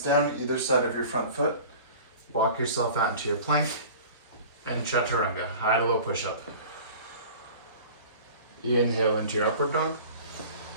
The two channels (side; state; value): both; inverted; correlation -0.41